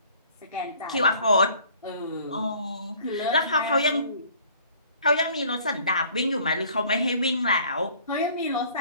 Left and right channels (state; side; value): inverted; both; correlation -0.54